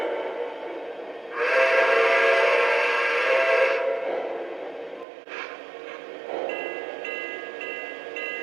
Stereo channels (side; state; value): left; drops out; at 5.1 s